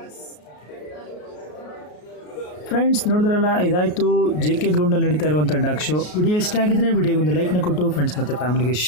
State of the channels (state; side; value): late; right; 33 ms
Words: ಫ್ರೆಂಡ್ಸ್ ನೋಡಿದ್ರಲ್ಲ, ಇದಾಯಿತು JK ಗ್ರೌಂಡಲ್ಲಿ ನಡೀತಾ ಇರುವಂಥ ಡಾಗ್ ಶೋ. ವಿಡಿಯೋ ಇಷ್ಟ ಆಗಿದ್ರೆ ವಿಡಿಯೋಗೊಂದು ಲೈಕ್ನ ಕೊಟ್ಟು ಫ್ರೆಂಡ್ಸ್ ಮತ್ತು ಫ್ಯಾಮಿಲಿಗೆ